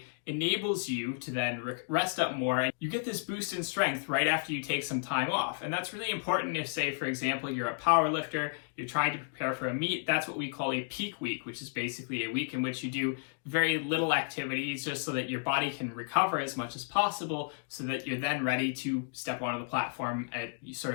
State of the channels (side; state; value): right; silent; digital silence